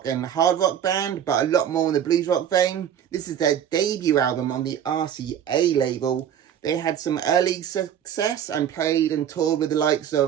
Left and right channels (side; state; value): left; quieter; 9.4 dB